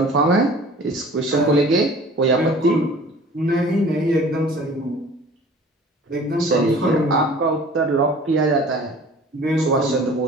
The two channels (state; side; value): normal; both; correlation 0.46